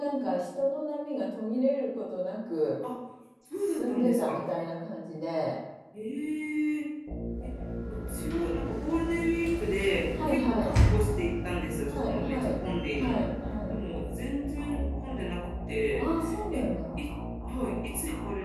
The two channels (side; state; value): both; identical; correlation 1.00